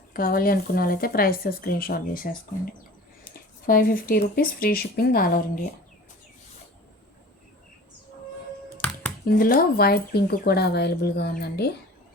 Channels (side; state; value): both; normal; correlation 0.41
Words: కావాలి అనుకున్న వాళ్ళైతే ప్రైస్తో స్క్రీన్ షాట్ చేసేసుకోండి. 550 rupees, free shipping all over India. ఇందులో వైట్ పింక్ కూడా అవైలబుల్గా ఉందండి.